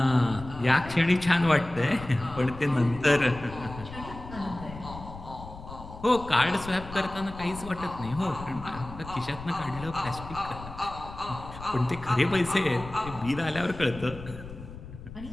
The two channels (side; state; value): left; noise; rumble, 13 dB below the sound